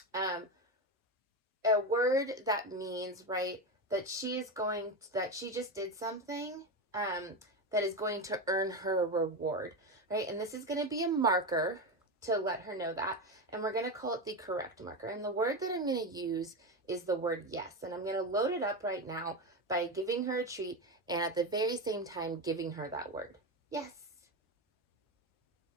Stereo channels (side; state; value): both; normal; correlation 0.16